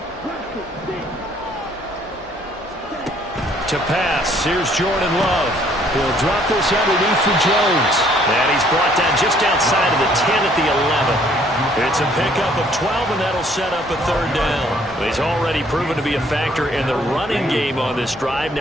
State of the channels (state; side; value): normal; both; correlation 0.62